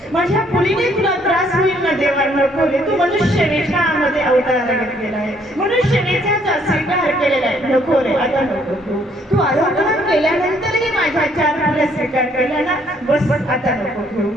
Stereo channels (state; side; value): normal; both; correlation 0.66